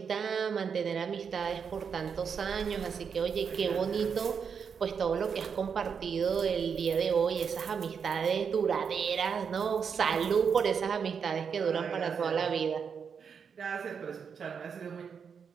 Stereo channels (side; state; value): left; quieter; 6.6 dB